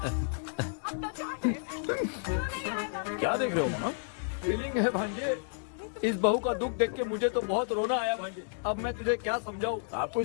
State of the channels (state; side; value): silent; right; digital silence